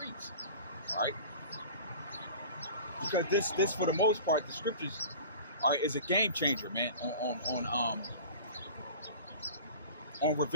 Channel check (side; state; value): both; inverted; correlation -0.40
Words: All right, because this for the most part, the scriptures, all right, is a game changer, man, on